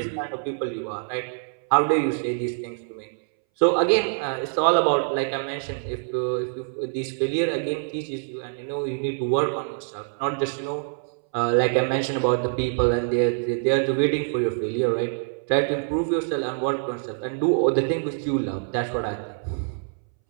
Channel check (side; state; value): left; silent; 62 dB below the other